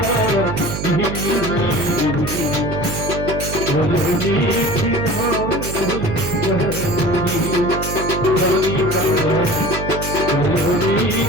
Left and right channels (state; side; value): noise; right; hum, 5 dB below the sound